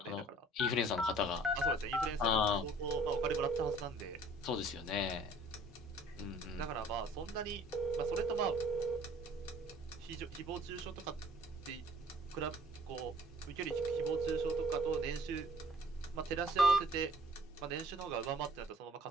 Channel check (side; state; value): both; normal; correlation 0.55